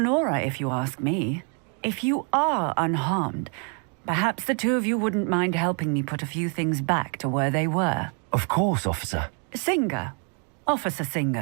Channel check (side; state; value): left; quieter; 39.4 dB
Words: aura, if you ask me. If you are unharmed, perhaps the two of you wouldn't mind helping me put a few things back to where they were. Of course, officer. Singer. Officer